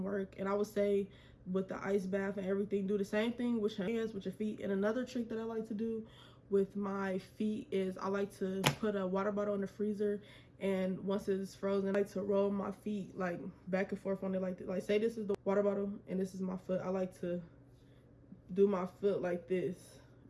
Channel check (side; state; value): both; identical; correlation 1.00